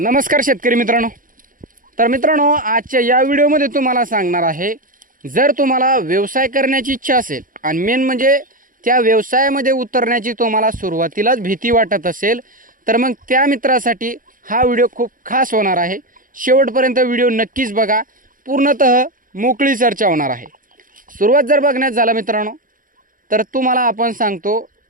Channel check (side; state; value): left; late; 0.40 ms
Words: शेतकरी मित्रांनो। तर मित्रांनो, आजच्या या व्हिडिओमध्ये तुम्हाला सांगणार आहे, जर तुम्हाला व्यवसाय करण्याची इच्छा असेल आणि मेन म्हणजे त्या व्यवसायामध्ये उतरण्याची तुम्हाला सुरुवातीलाच भीती वाटत असेल, तर मग त्या मित्रासाठी हा व्हिडिओ खूप खास होणार आहे। शेवटपर्यंत व्हिडिओ नक्कीच बघा, पूर्णतः मोकळी चर्चा होणार आहे। सुरुवात जर बघण्यात झाला मित्रांनो, तर तुम्हाला आपण सांगतो,